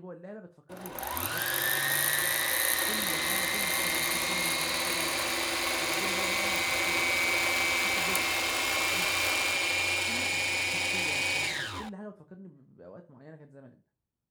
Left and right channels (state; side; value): identical; both; correlation 1.00